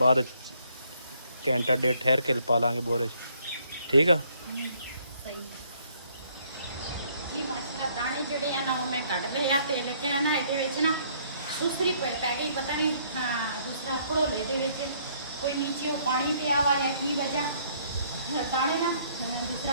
ਬਾਅਦ ਘੰਟਾ ਡੇਢ ਠਹਿਰ ਕੇ ਪਾ ਲਾਂਗੇ ਬੋਰੇ 'ਚ। ਠੀਕ ਆ ਸਹੀ ਜੀ। ਮਾਸ਼ਾਅੱਲਾ ਦਾਣੇ ਜਿਹੜੇ ਆ ਨਾ ਉਹ ਮੈਂ ਕੱਢ ਲਏ ਆ ਤੇ ਲੇਕਿਨ ਨਾ ਇਹਦੇ ਵਿੱਚ ਨਾ ਦੂਸਰੀ ਪੈ ਗਈ ਪਤਾ ਨਹੀਂ ਦੂਸਰਾ ਘੜੋਲੇ ਦੇ ਵਿੱਚ ਕੋਈ ਨੀਚੇ ਪਾਣੀ ਪਿਆ ਵਾ ਜਾਂ ਕੀ ਵਜ੍ਹਾ ਦਾਣੇ ਨਾ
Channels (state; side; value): inverted; both; correlation -0.65